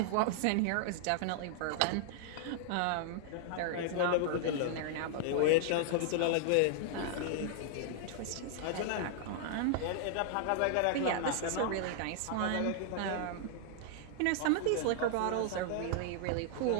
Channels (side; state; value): both; different; correlation -0.01